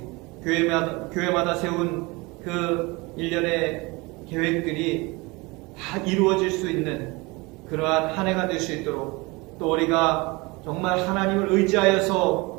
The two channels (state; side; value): quieter; left; 25.1 dB